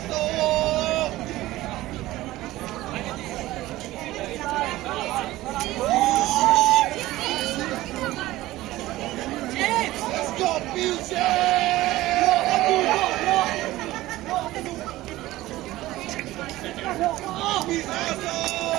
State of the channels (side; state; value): left; quieter; 16.9 dB